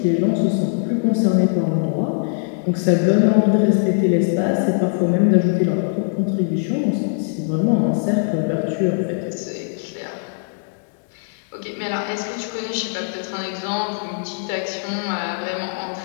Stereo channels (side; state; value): right; silent; digital silence